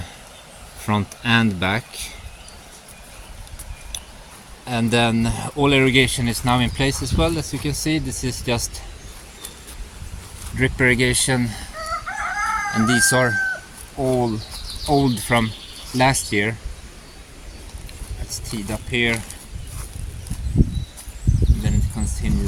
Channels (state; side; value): identical; both; correlation 1.00